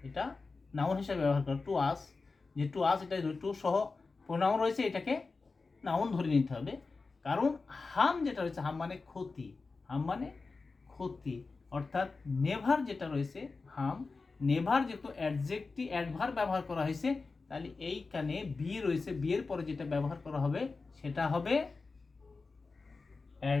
এটা নাউন হিসেবে ব্যবহার করে। টু আস, যে টু আস, এটা টু সহ প্রোনাউন রয়েছে, এটাকে নাউন ধরে নিতে হবে। কারণ হাম যেটা রয়েছে, হাম মানে ক্ষতি, হাম মানে ক্ষতি, অর্থাৎ নেভার যেটা রয়েছে হাম, নেভার যেহেতু অ্যাডজেক্টিভ অ্যাডভার্ব ব্যবহার করা হয়েছে, তাহলে এইখানে বি রয়েছে, বি এর পরে যেটা ব্যবহার করা হবে সেটা হবে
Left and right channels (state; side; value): quieter; right; 4.1 dB